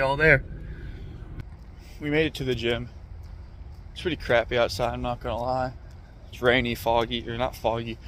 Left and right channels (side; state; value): both; identical; correlation 1.00